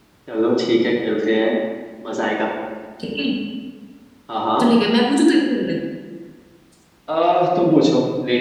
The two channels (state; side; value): identical; both; correlation 1.00